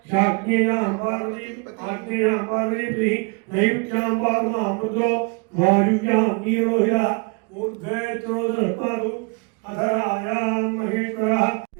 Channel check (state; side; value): quieter; left; 32.1 dB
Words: శాగ్నేయాం పార్వతీ ఆగ్నేయాం పార్వతీ నైరుత్యాం పాదమామృతో వాయువ్యాం నీరోహిరః ఊర్ధ్వే త్రోదపాదు అధరాయాం మహేశ్వరః.